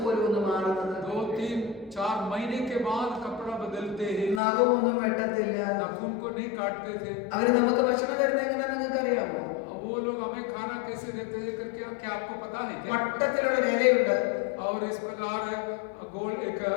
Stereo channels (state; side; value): drops out; right; at 4.4 s